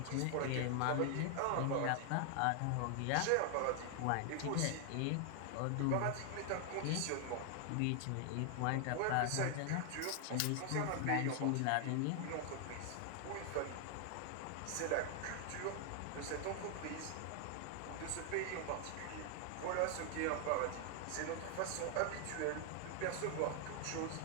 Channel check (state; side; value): different; both; correlation 0.00